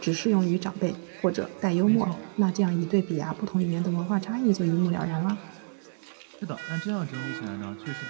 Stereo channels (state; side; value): silent; left; digital silence